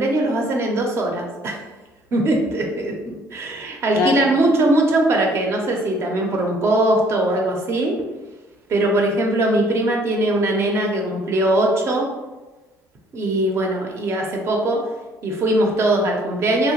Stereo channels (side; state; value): both; normal; correlation 0.60